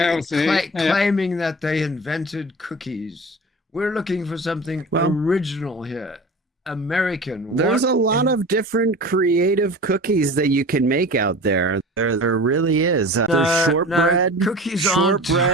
yeah. Claiming that they invented cookies. We're looking for something Well- original here. American. There's What a lot of different creative cookies that you can make out there. There really is. There's No, shortbread, cookies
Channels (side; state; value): both; normal; correlation 0.37